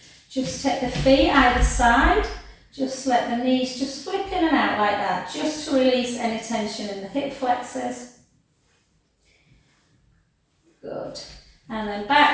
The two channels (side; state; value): both; identical; correlation 1.00